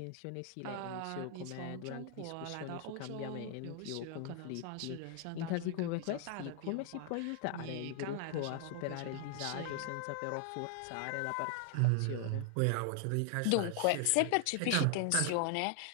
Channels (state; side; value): different; both; correlation 0.00